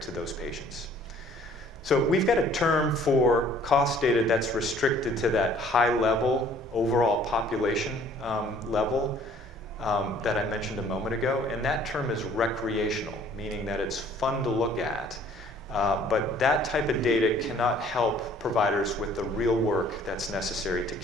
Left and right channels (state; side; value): normal; both; correlation 0.56